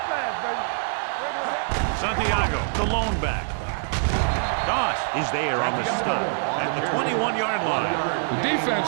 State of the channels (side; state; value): left; silent; digital silence